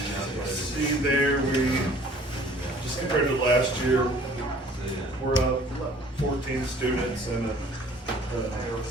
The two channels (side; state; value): both; normal; correlation 0.53